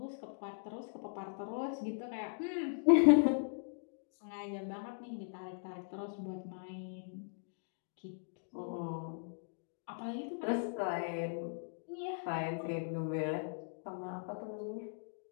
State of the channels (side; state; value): right; silent; digital silence